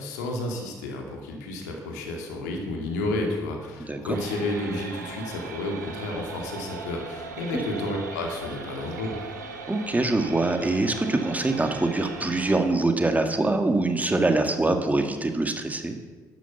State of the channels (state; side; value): normal; both; correlation 0.73